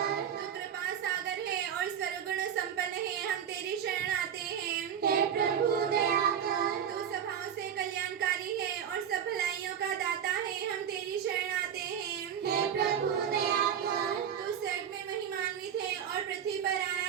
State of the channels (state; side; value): quieter; left; 8.6 dB